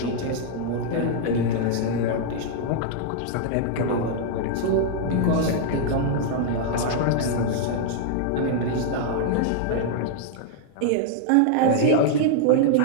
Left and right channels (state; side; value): different; both; correlation -0.01